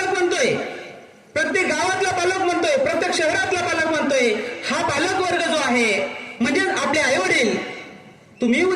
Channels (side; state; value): both; identical; correlation 1.00